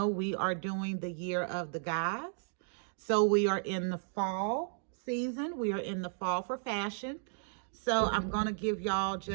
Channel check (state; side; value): silent; left; digital silence